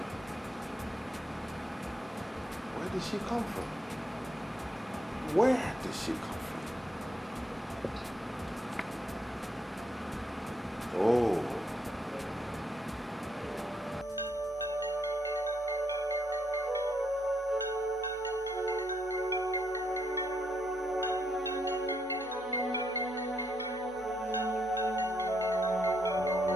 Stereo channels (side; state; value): both; normal; correlation 0.76